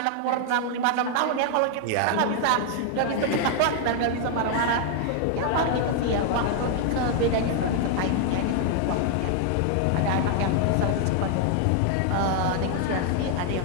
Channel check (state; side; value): different; both; correlation 0.00